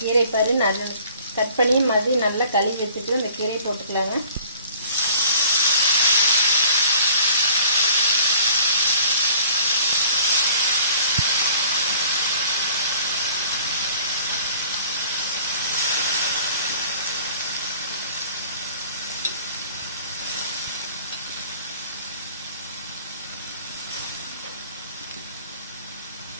பாரு நல்லா கட் பண்ணி மறுபடியும் நல்லா கழுவி வச்சுட்டு இந்த கீரையை போட்டுக்கலாங்க.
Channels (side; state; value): both; inverted; correlation -0.50